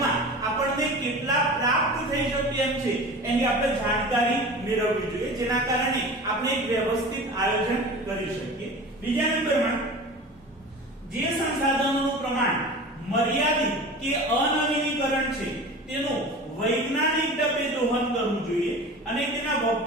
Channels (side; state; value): both; normal; correlation 0.36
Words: આપણને કેટલા પ્રાપ્ત થઈ શકે એમ છે એની આપણે જાણકારી મેળવવી જોઈએ જેના કારણે આપણે એક વ્યવસ્થિત આયોજન કરી શકીએ. બીજા નંબરમાં જે સંસાધનોનું પ્રમાણ મર્યાદિત કે અનવીનીકરણ છે તેનું વૈજ્ઞાનિક ઢબે દોહન કરવું જોઈએ અને તેનો